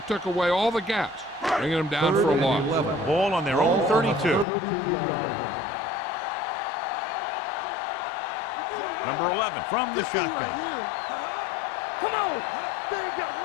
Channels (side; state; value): right; drops out; at 4.5 s